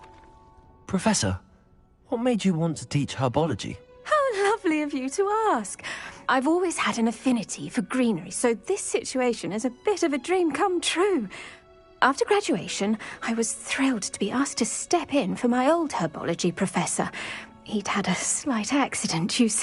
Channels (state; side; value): identical; both; correlation 1.00